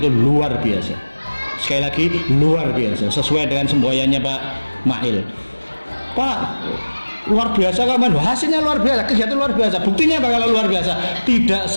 itu luar biasa. Sekali lagi luar biasa, sesuai dengan semboyannya Pak Mahil. Pak, luar biasa kan, hasilnya luar biasa, kegiatan luar biasa. Buktinya apa kalau luar biasa? Tidak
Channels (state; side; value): inverted; both; correlation -1.00